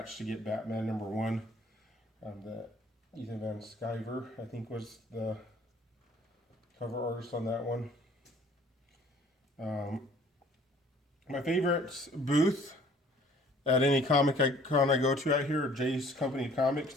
to get Batman number 1. Ethan Van Sciver, I think, was the cover artist on that one. My favorite booth at any comic con I go to out here, Jay's Company Comics.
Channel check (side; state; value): both; normal; correlation 0.55